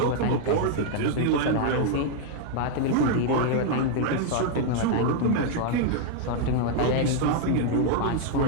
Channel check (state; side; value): different; both; correlation 0.00